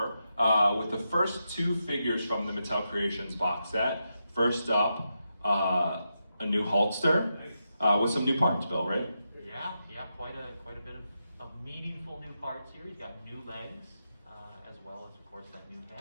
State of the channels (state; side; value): inverted; both; correlation -0.86